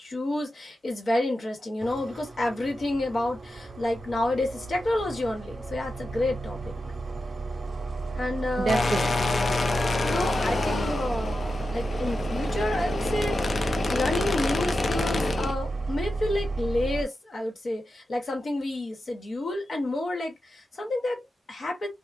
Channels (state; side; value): normal; both; correlation 0.90